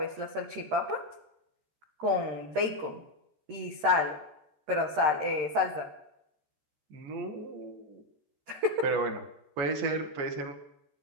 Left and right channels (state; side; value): late; left; 13 ms